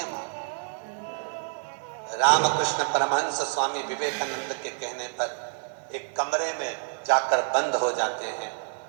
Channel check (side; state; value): left; silent; 58 dB below the other